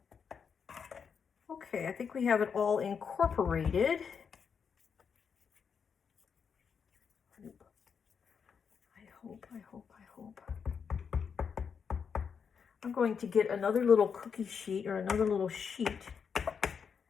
Okay, I think we have it all incorporated. I hope. I'm going to get another little cookie sheet or another little sheet,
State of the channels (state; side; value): quieter; right; 6.5 dB